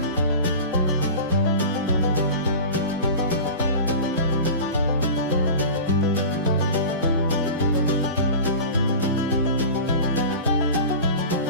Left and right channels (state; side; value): inverted; both; correlation -0.32